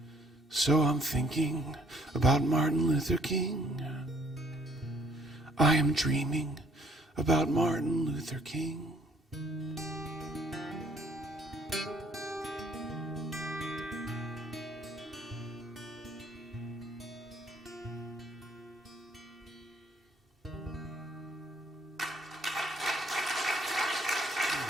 So I'm thinking about Martin Luther King. I am dreaming about Martin Luther King.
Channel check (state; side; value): normal; both; correlation 0.63